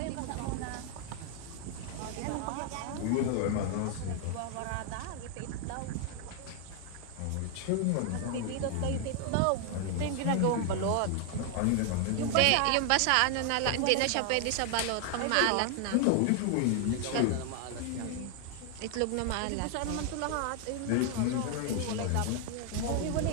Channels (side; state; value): both; different; correlation 0.00